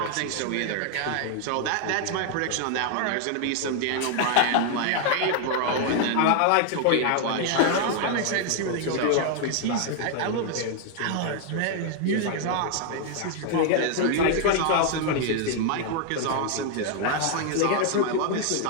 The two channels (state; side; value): different; both; correlation 0.00